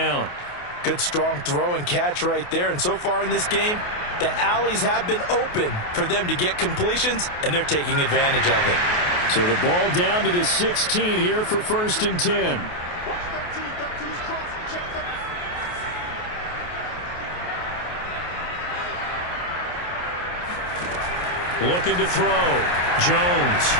Good strong throw and catch right there. And so far in this game, the alleys have been open for them to get completions, and they're taking advantage of it. So the ball down to the 16 here for 1st and 10. Looking to throw. Jones.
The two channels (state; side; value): late; right; 28 ms